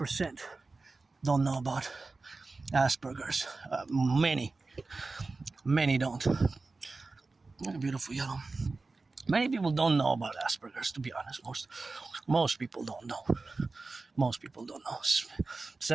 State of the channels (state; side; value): quieter; left; 3.7 dB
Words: don't know about Asperger's. Many don't. Beautiful yellow. Many people don't know about Asperger's, to be honest. Most people don't know. Most people don't know.